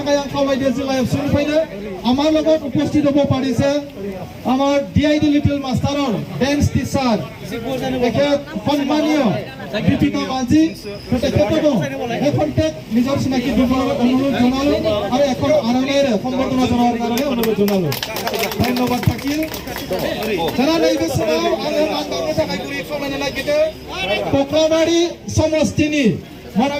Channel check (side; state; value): both; identical; correlation 1.00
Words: आं खावलायदों जिल्ला एबसुनिफ्रायनो আমার লগত উপস্থিত হব পাৰিছে আমাৰ ডিআইডি লিটল মাষ্টাৰৰ ডেন্স টিচাৰ এখেত সন্মানীয় দীপিকা মাঝি তেখেতকো এখনটেক নিজৰ চিনাকি দিবলৈ অনুৰোধ জনালো আৰু এখন আৰণেৰে সম্বৰ্ধনা জনোৱাৰ কাৰণে অনুৰোধ জনালো ধন্যবাদ থাকিল যারা নৈবে समाव आङो मान बावनो थाखाय गुरै खावलायनो नागिरदों कक्लाबारि समस्तिनि